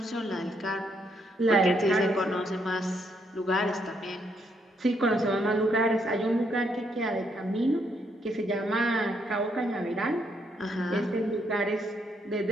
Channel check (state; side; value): normal; both; correlation 0.74